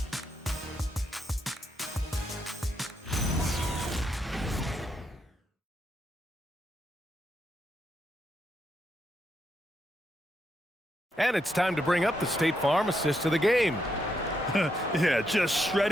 And it's time to bring up the State Farm assist of the game. Yeah, just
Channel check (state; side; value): normal; both; correlation 0.80